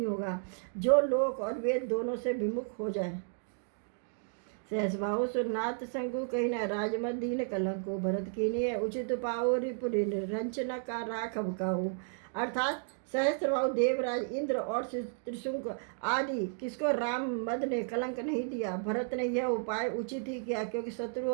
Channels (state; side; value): silent; left; digital silence